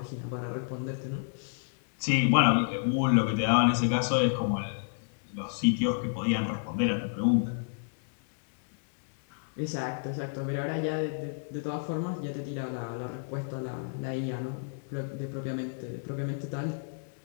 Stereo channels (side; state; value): right; silent; digital silence